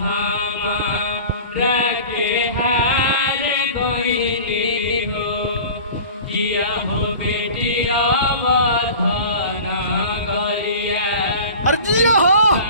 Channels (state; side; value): inverted; both; correlation -0.39